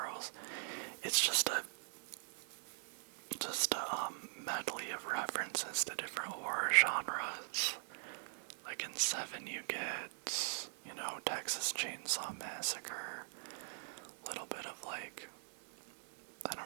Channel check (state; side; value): silent; left; 50 dB below the other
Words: It's just a medley of references to different horror genres. Like in 7 you get, Texas Chainsaw Massacre, a little bit of like, I